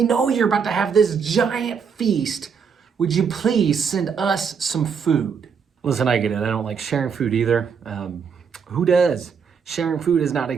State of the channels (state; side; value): quieter; left; 6.4 dB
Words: know you're about to have this giant feast. Would you please send us some food? Listen, I get it. I don't like sharing food either. Who does? Sharing food is not